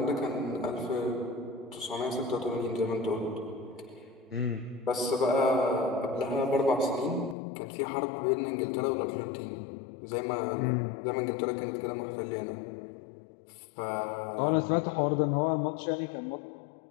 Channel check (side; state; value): right; drops out; at 7.4 s